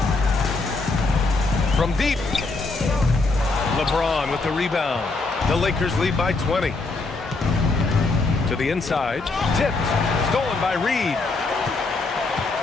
From deep. LeBron with the rebound. The Lakers lead by 20. To the inside. Tipped. Stolen by Reed.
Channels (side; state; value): right; quieter; 3.6 dB